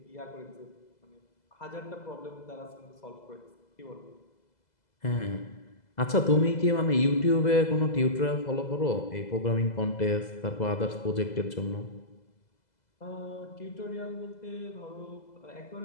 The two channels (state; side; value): late; right; 2.0 ms